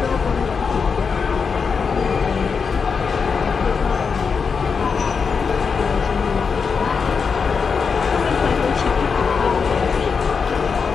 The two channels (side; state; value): right; quieter; 5.6 dB